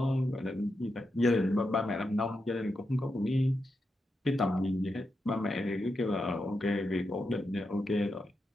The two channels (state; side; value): normal; both; correlation 0.86